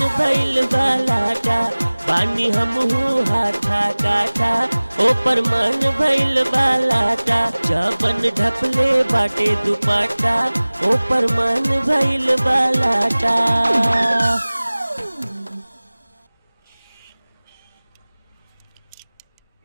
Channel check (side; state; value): both; inverted; correlation -1.00